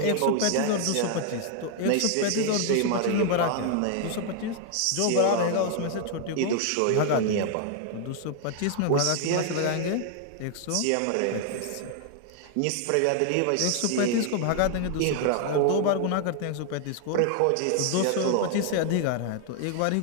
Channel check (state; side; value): different; both; correlation 0.00